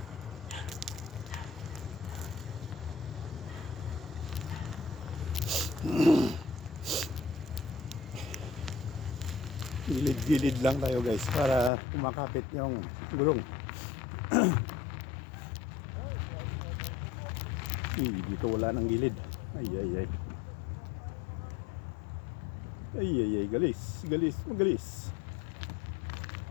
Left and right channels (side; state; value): right; drops out; at 11.7 s